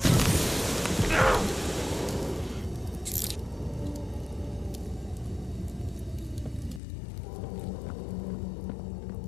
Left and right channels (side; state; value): right; drops out; at 6.8 s